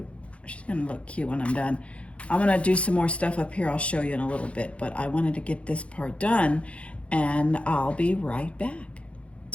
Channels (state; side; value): late; right; 0.062 ms